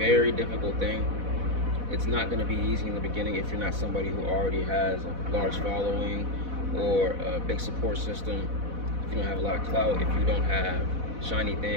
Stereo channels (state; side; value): late; left; 4.1 ms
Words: difficult thing. It's not going to be easy in the beginning if you're not somebody who already has a large following or a big support system. If you don't have a lot of clout, if you don't have shiny